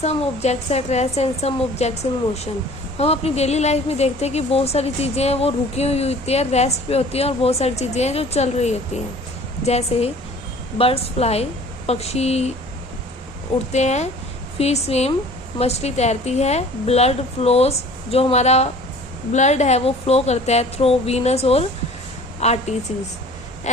objects at rest and some objects in motion. हम अपनी daily life में देखते हैं कि बहुत सारी चीज़ें हैं वो रुकी हुई होती है, रेस्ट पे होती हैं, और बहुत सारी चीज़ें हैं जो चल रही होती हैं. जैसे बर्ड्स फ्लाई, पक्षी उड़ते हैं, फिश स्विम, मछली तैरती है, ब्लड फ्लोज, जो हमारा ब्लड है वो फ्लो करता है थ्रू वीनस और आर्टरीज,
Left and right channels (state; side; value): normal; both; correlation 0.48